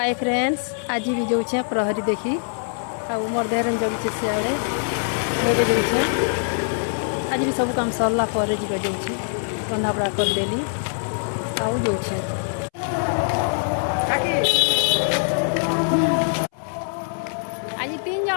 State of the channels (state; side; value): silent; right; 63 dB below the other